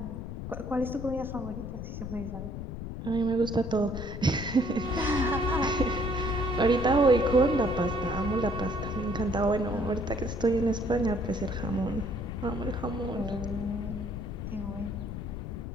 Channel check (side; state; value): left; noise; rumble, 7 dB below the sound